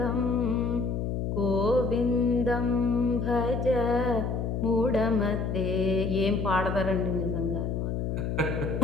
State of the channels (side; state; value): left; noise; hum, 1 dB below the sound